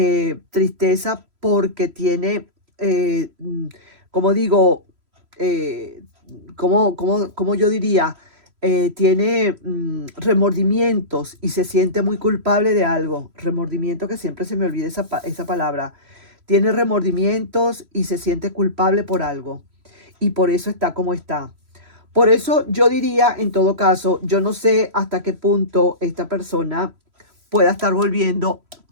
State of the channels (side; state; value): left; late; 3.0 ms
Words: tristeza porque tiene, como digo, eh, como yo diría, tiene remordimientos y se siente muy culpable de algo. Remordimiento, que siempre se me olvida esa palabra. Tiene remordimientos y se siente culpable por algo. Y por eso está como está. Por eso yo diría, en todo caso, yo no sé hasta qué punto esta persona pueda estar volviendo